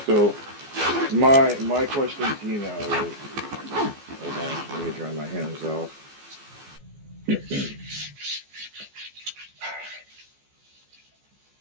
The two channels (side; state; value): left; late; 14 ms